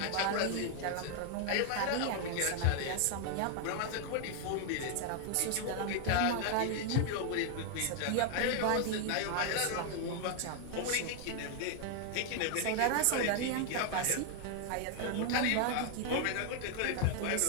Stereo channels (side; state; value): both; different; correlation 0.00